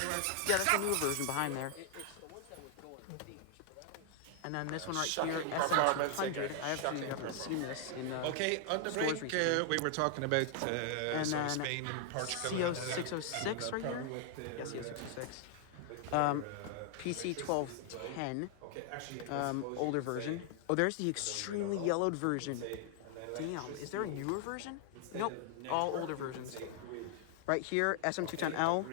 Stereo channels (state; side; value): different; both; correlation 0.00